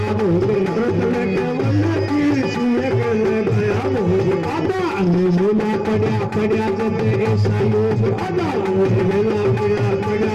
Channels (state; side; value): identical; both; correlation 1.00